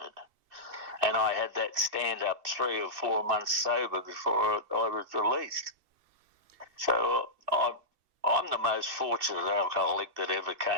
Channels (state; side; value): late; left; 2.6 ms